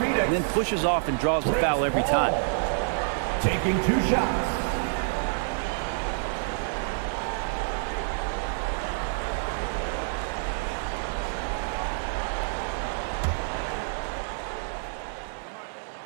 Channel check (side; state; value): left; silent; digital silence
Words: then pushes off and draws the foul every time. Taking 2 shots.